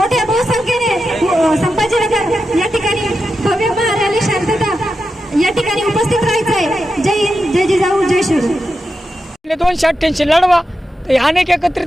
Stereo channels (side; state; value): both; normal; correlation 0.89